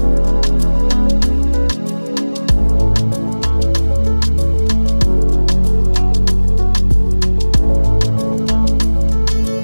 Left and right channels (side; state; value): both; inverted; correlation -1.00